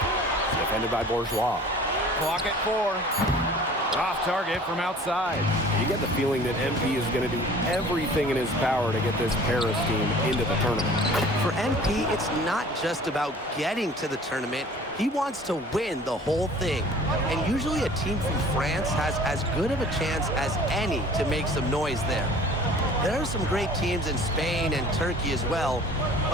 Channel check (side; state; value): both; normal; correlation 0.48